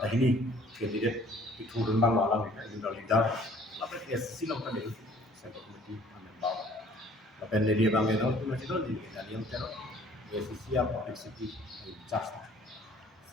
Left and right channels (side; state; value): both; normal; correlation 0.55